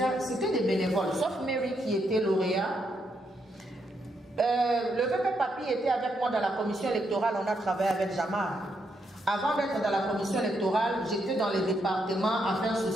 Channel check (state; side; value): normal; both; correlation 0.78